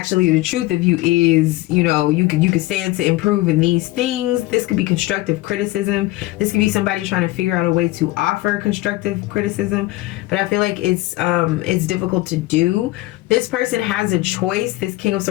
the truth of you is, you know, you could stand to improve in these things. This could be constructive criticism. This could be somebody trying to figure out a way to offer constructive criticism, but I feel like it's difficult to do. This person has a choice, this King of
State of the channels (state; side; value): quieter; right; 18.6 dB